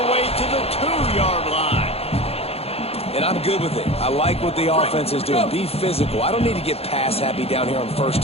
way to the 2-yard line. And I'm good with it. I like what the offense is doing. Be physical. I don't need to get pass happy down here on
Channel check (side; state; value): right; late; 0.29 ms